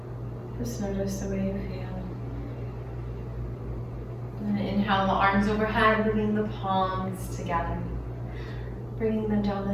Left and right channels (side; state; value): both; identical; correlation 1.00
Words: Just notice the way you feel. And inhale the arms overhead, bringing the palms together. Bringing them down